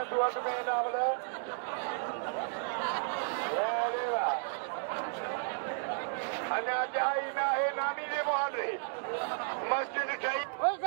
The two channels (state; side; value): silent; left; digital silence